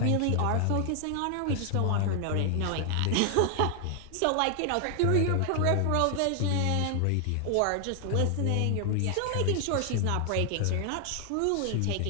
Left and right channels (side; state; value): both; different; correlation 0.00